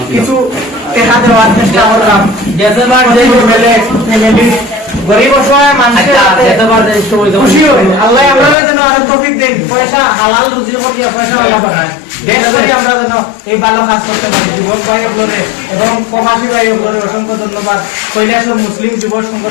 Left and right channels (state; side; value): drops out; right; at 8.6 s